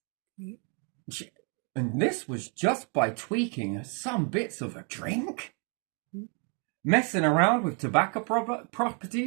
And this was just by tweaking some bits of a drink. Messing around with tobacco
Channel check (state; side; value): quieter; left; 38.6 dB